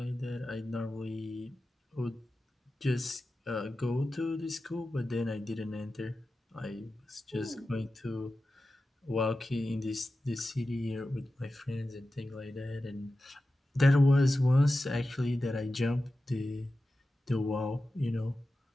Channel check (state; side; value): normal; both; correlation 0.93